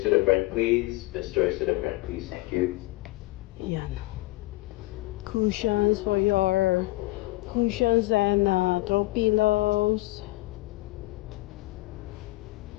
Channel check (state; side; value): quieter; right; 20.5 dB